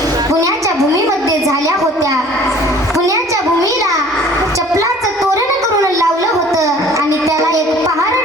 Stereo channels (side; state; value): both; normal; correlation 0.51